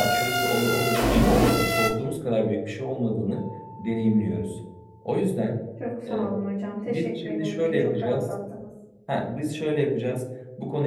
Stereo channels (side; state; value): both; identical; correlation 1.00